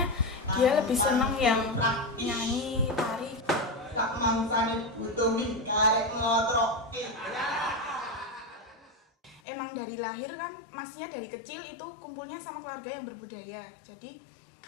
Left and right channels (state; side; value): drops out; right; at 9.4 s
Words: dia lebih seneng yang nyanyi, tari. Tak mangsane butuh karek ngotroke. Emang dari lahir kan, masnya dari kecil itu kumpulnya sama keluarga yang berbudaya. Jadi